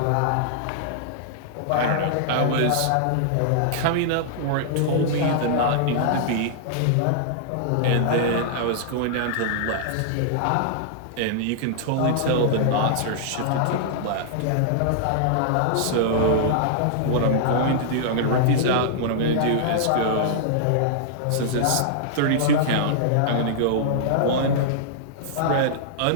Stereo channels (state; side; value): different; both; correlation -0.01